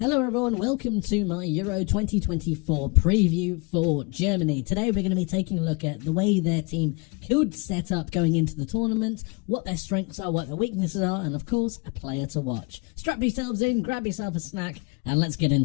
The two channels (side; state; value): right; quieter; 29.5 dB